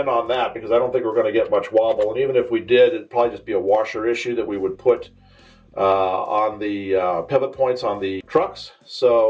on that because I don't think we're going to get much wobble. And even if we did, it'd probably just be a washer issue that we would put on the pivot points on the trucks.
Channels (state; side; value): identical; both; correlation 1.00